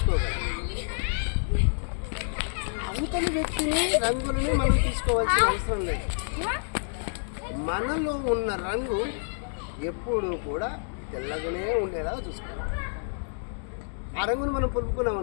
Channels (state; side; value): silent; right; digital silence